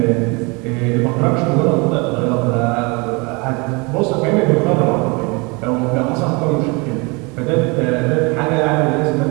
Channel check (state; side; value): quieter; left; 28.6 dB